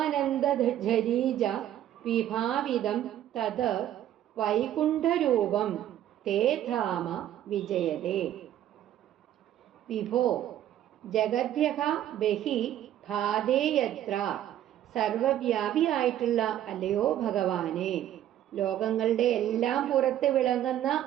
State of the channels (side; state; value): left; quieter; 11.8 dB